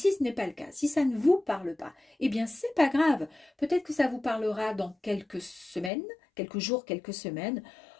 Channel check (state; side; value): drops out; right; at 5.9 s